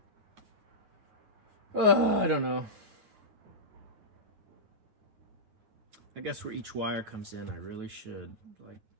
I don't know. I guess where each wire comes in, I really should, like,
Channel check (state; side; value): late; left; 9.1 ms